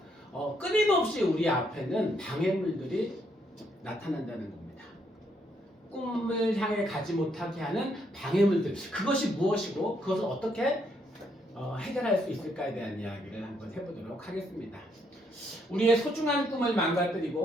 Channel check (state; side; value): normal; both; correlation 0.73